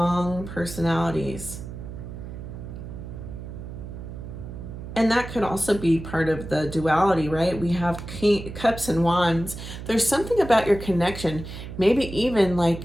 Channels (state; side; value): noise; right; hum, 10 dB below the sound